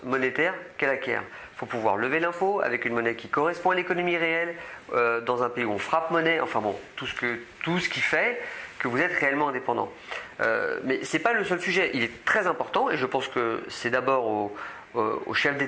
monétaire qu'elle acquiert. Il faut pouvoir lever l'impôt avec une monnaie qui correspond à l'économie réelle, dans un pays où on frappe monnaie, enfin bon, tout ce qui fait que vous êtes réellement indépendant. Mais ce n'est pas le seul sujet, il est très important et je pense que c'est d'abord aux chefs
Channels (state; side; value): identical; both; correlation 1.00